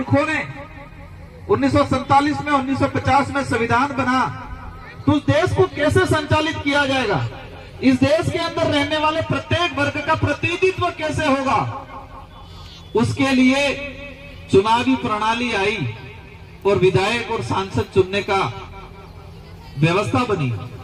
ने 1947 में, 1950 में संविधान बना, तो उस देश को कैसे संचालित किया जाएगा? इस देश के अंदर रहने वाले प्रत्येक वर्ग का प्रतिनिधित्व कैसे होगा? उसके लिए चुनावी प्रणाली आई और विधायक और सांसद चुनने का व्यवस्था बनी।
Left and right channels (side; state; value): both; identical; correlation 1.00